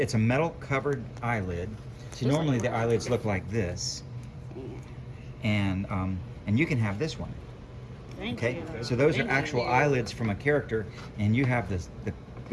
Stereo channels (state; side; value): identical; both; correlation 1.00